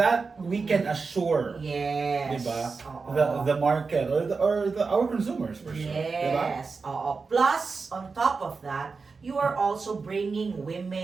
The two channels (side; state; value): left; quieter; 4.6 dB